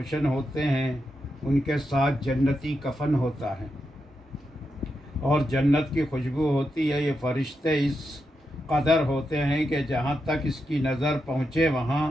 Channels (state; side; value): normal; both; correlation 0.86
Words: ہوتے ہیں۔ ان کے ساتھ جنتی کفن ہوتا ہے اور جنت کی خوشبو ہوتی ہے۔ یہ فرشتے اس قدر ہوتے ہیں کہ جہاں تک اس کی نظر پہنچے وہاں